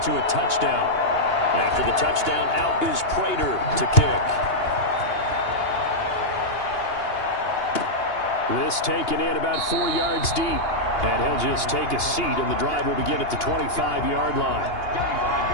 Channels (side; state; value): right; late; 2.8 ms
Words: a touchdown. After the touchdown, out is Prater to kick. This taken in about 4 yards deep. And he'll just take a seat, and the drive will begin at the 25-yard line.